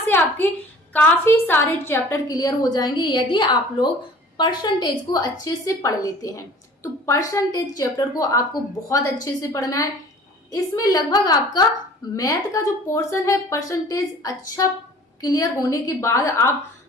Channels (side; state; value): both; normal; correlation 0.47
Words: आपके काफी सारे चैप्टर क्लियर हो जाएंगे यदि आप लोग परसेंटेज को अच्छे से पढ़ लेते हैं। तो परसेंटेज चैप्टर को आपको बहुत अच्छे से पढ़ना है। इसमें लगभग आपका मैथ का जो पोर्शन है परसेंटेज अच्छा क्लियर होने के बाद आप